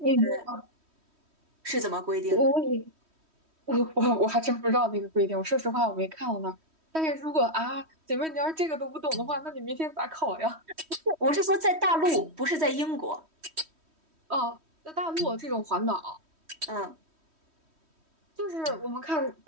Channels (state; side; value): late; left; 3.1 ms